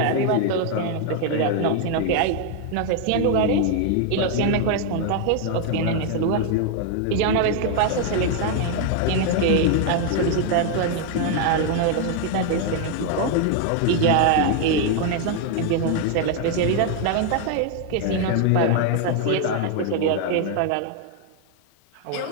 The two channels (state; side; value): different; both; correlation 0.00